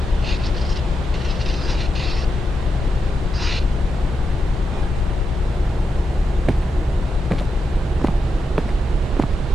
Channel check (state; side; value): normal; both; correlation 0.86